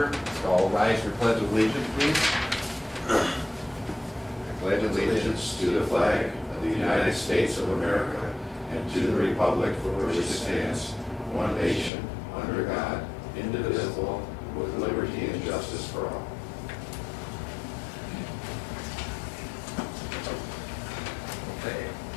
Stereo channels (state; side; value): drops out; right; at 11.9 s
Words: So all rise for Pledge of Allegiance, please. I pledge allegiance to the flag of the United States of America and to the republic for which it stands, one nation, under God, indivisible, with liberty and justice for all. Okay,